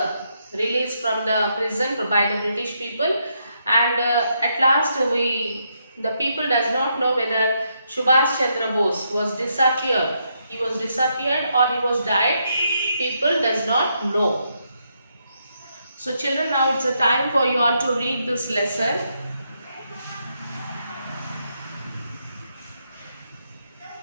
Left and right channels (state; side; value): inverted; both; correlation -0.78